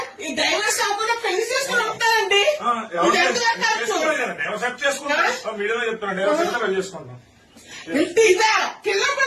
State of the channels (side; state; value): both; identical; correlation 1.00